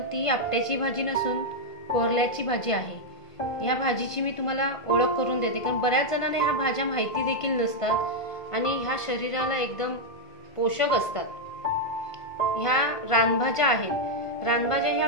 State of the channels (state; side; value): late; right; 1.5 ms